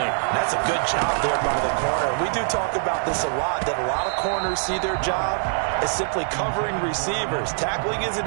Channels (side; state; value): left; silent; 63 dB below the other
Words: That's a good job there by the corner. We do talk about this a lot, that a lot of corners see their job as simply covering receivers. Tackling